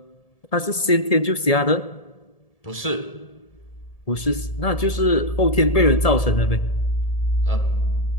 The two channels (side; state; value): right; late; 1.7 ms